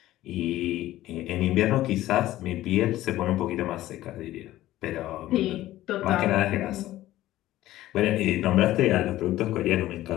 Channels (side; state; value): right; quieter; 15.1 dB